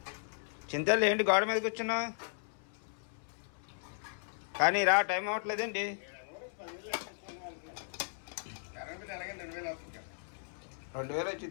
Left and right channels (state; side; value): silent; right; 54 dB below the other